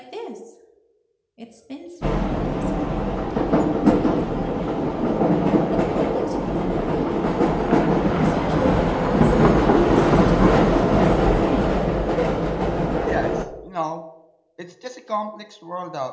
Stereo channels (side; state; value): both; identical; correlation 1.00